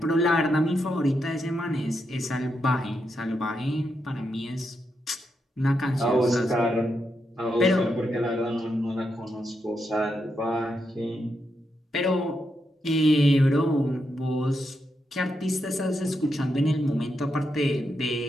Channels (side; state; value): both; normal; correlation 0.83